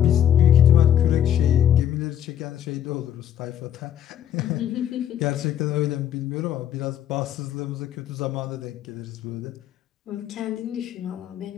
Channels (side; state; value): right; quieter; 10.4 dB